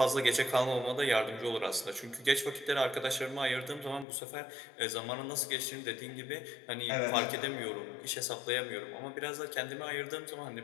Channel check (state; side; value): drops out; right; at 4.0 s